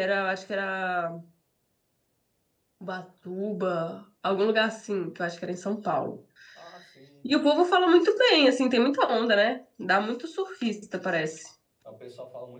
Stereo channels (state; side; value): identical; both; correlation 1.00